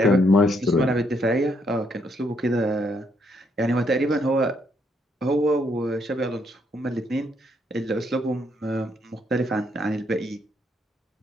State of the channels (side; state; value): both; normal; correlation 0.73